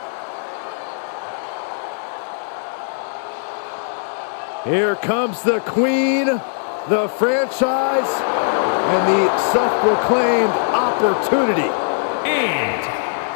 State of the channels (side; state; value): right; silent; 62 dB below the other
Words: Here comes the Queen, the franchise, and the self-proclaimed opportunity. And